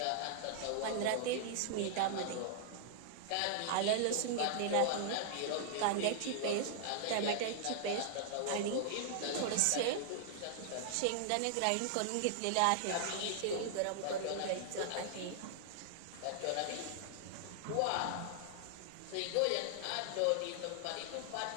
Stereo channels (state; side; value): different; both; correlation -0.01